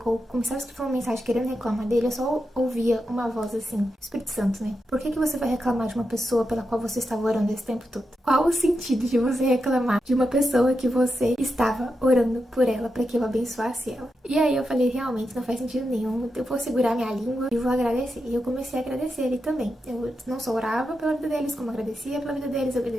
ou começava a escrever uma mensagem querendo reclamar dele, eu só ouvia uma voz assim, Espírito Santo, né? Por que você vai reclamar de uma pessoa pela qual você estava orando esse tempo todo? Qual o sentido de você reclamar de uma pessoa que você estava orando por ela para que eu abençoasse ela? E aí eu falei, realmente não faz sentido nenhum, eu vou segurar minha língua e vou agradecer. E eu comecei a agradecer ele também. Eu não só orava pela vida deles, como agradecia pela vida deles,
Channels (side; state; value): both; normal; correlation 0.87